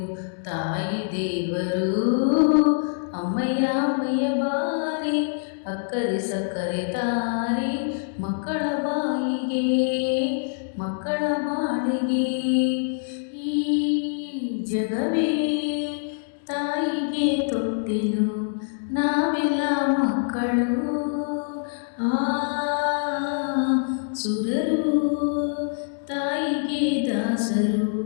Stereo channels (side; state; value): right; silent; digital silence